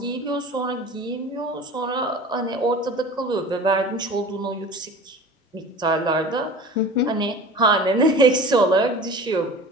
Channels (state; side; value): normal; both; correlation 0.39